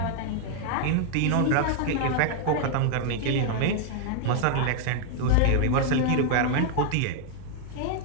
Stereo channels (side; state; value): both; different; correlation 0.00